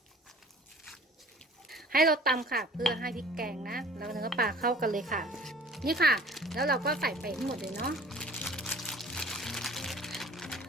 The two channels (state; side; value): normal; both; correlation 0.47